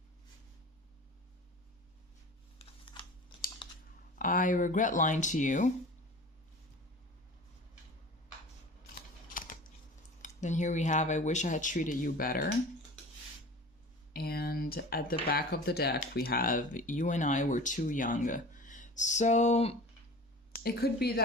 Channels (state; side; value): normal; both; correlation 0.39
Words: I regret lying to you. Then here we have, I wish I had treated you better. And at the back of the deck, we have, you and I were too young. So it could be